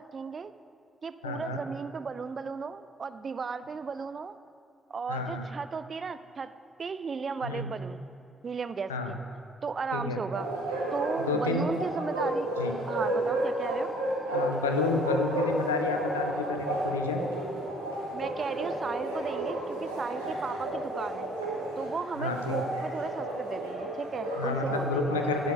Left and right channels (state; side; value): normal; both; correlation 0.51